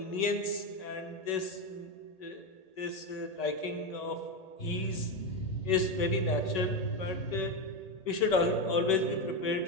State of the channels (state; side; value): late; right; 1.8 ms